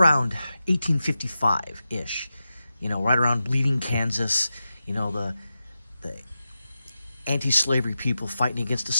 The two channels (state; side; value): inverted; both; correlation -0.91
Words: 1855-ish, right around Bleeding, Kansas, the anti-slavery people fighting against the